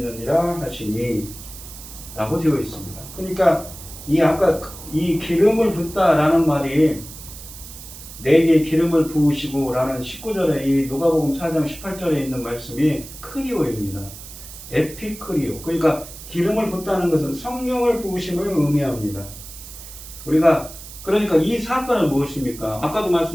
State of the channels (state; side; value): noise; right; hiss, 15 dB below the sound